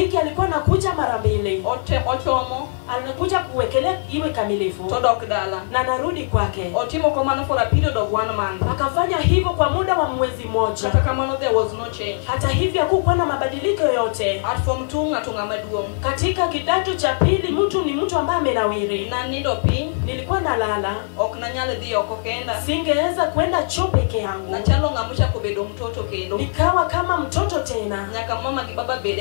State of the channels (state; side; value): silent; right; 63 dB below the other